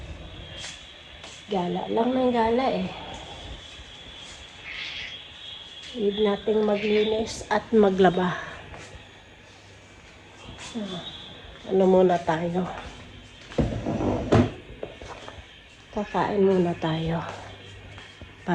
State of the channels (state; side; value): identical; both; correlation 1.00